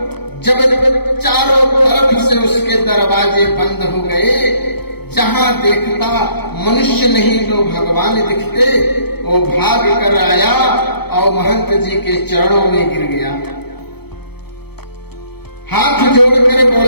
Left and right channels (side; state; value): right; late; 0.97 ms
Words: जब चारों तरफ से उसके दरवाजे बंद हो गए, जहां देखता मनुष्य नहीं तो भगवान दिखते, वो भाग कर आया और महंत जी के चरणों में गिर गया। हाथ जोड़कर